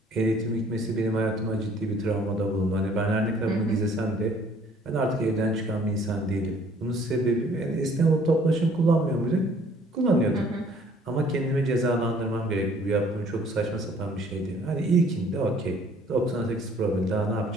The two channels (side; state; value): both; normal; correlation 0.58